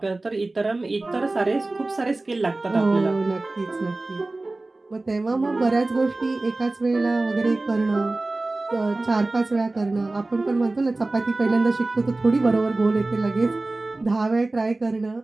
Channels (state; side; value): quieter; left; 3.0 dB